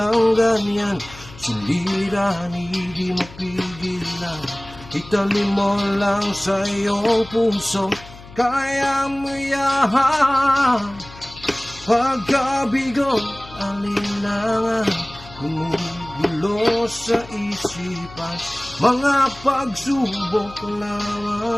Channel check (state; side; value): noise; left; hum, 18 dB below the sound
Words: ganyan, sulirahan hindi mapigilan. Italim mo lang sa iyong puso, kaya mo yan. Pagkabigo, alinlangan, gumugulo sa isipan. Mga pagsubok